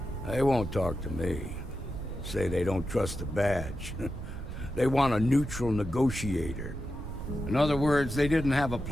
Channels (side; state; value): right; noise; rumble, 8 dB below the sound